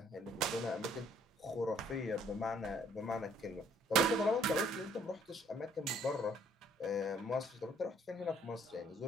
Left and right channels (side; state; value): both; normal; correlation 0.62